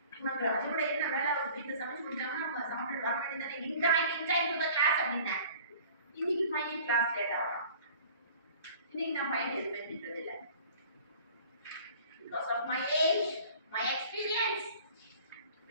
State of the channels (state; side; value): inverted; both; correlation -0.48